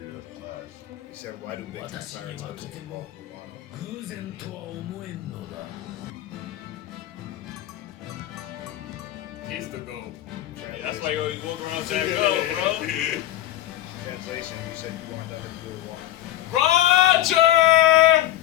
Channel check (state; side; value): quieter; right; 13.6 dB